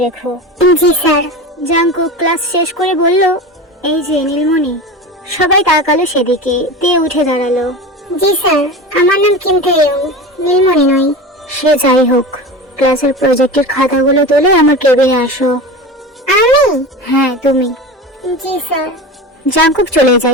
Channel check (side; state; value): both; normal; correlation 0.29